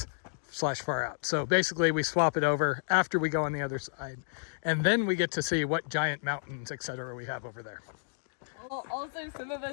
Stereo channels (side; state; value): right; silent; digital silence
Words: / far out. So basically we swap it over after we go on the other side. And then we get to see what giant mountains, etc. we have over there. Also, some of